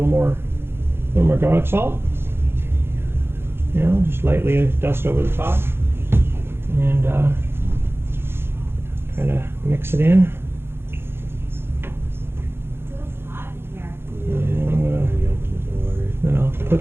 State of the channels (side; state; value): left; late; 0.11 ms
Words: more garlic salt. You know, just lightly dust over the top, and kind of mix it in. And then I'll